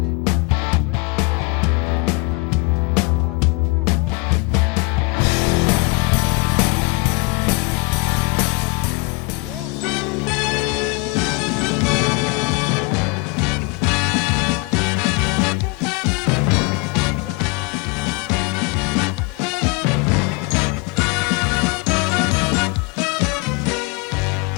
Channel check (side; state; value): right; quieter; 26.5 dB